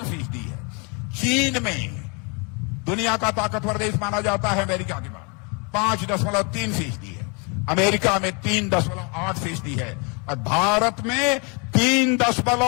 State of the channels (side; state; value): right; quieter; 33.2 dB